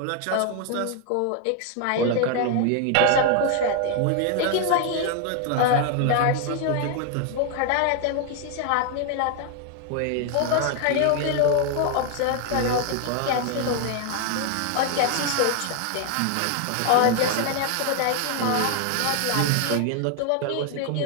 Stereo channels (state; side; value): different; both; correlation 0.00